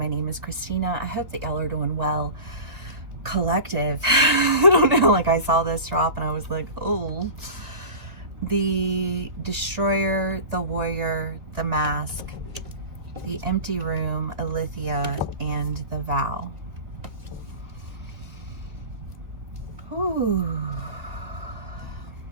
name is Christina. I hope that y'all are doing well. Collective. I don't know, like I saw this drop and I was like, oh. The Destroyer, the Warrior, the Mask, the Empty Room, Alethea, and the Vow. Ooh.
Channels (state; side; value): late; left; 1.9 ms